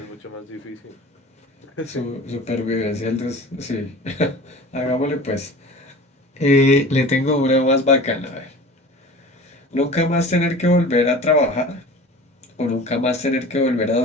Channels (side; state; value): both; normal; correlation 0.39